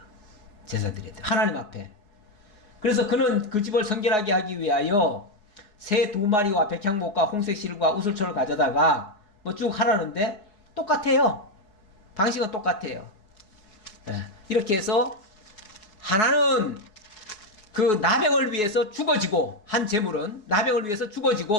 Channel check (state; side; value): late; right; 4.7 ms